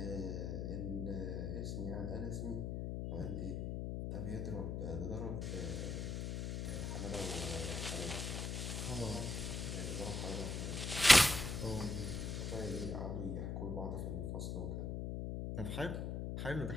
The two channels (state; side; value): noise; left; hum, 2 dB below the sound